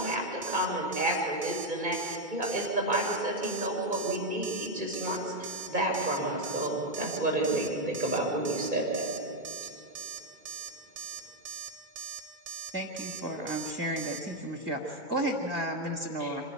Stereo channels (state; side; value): late; left; 2.2 ms